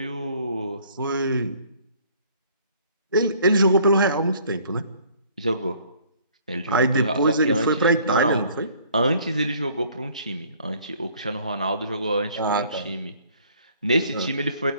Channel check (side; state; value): both; inverted; correlation -0.58